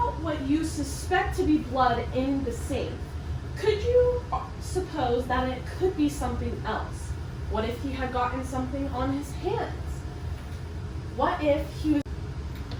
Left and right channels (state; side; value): identical; both; correlation 1.00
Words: what you suspect to be blood in the sink, could you suppose that it could be something else? What if he had gotten something on his hands? What if he was